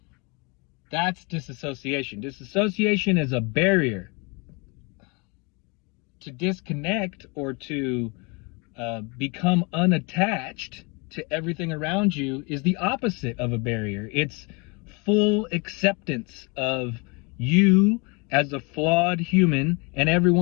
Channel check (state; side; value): quieter; right; 30.1 dB